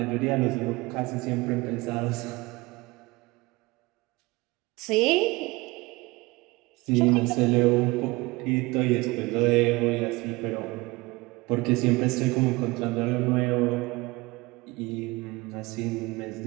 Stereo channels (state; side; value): quieter; left; 22.8 dB